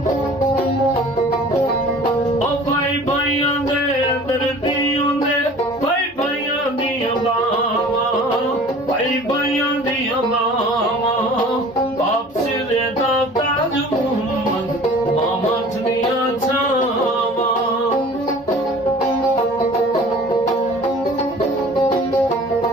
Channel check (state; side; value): normal; both; correlation 0.45